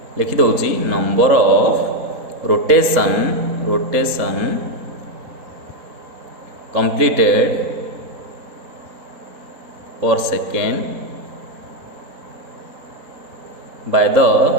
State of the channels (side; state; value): left; late; 3.8 ms